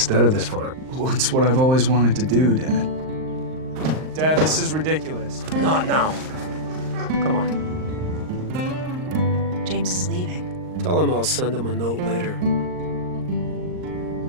of this farm. Well, it's what I've always wanted to do, Dad. Dad, this is ridiculous. Not now. Come on. James is leaving. Tell him I'll send him a note later.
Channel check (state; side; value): late; left; 39 ms